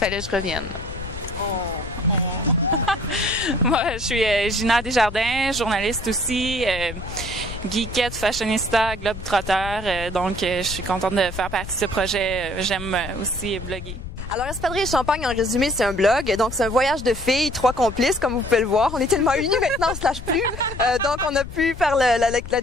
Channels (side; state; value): left; noise; rumble, 10 dB below the sound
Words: que je revienne. Moi, je suis Gina Desjardins, journaliste aussi, geekette, fashionista, globe-trotteur. Donc, je suis contente de faire partie de ce projet. J'aime aussi bloguer. Alors, Espadrilles et Champagne, en résumé, c'est un blog. Donc, c'est un voyage de filles, 3 complices, comme vous pouvez le voir. On est tellement unis maintenant, on se lâche plus. Donc, on a pu faire la